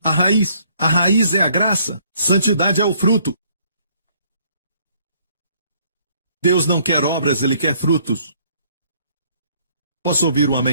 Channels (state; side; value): inverted; both; correlation -0.64